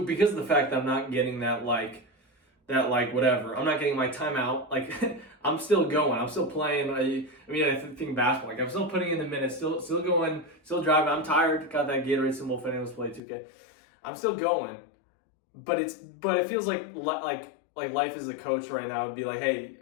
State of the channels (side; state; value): right; drops out; at 13.2 s